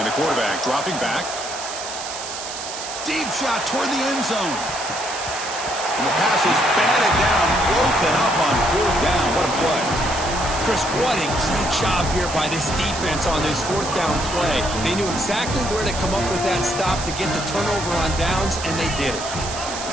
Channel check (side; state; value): right; noise; hiss, 8 dB below the sound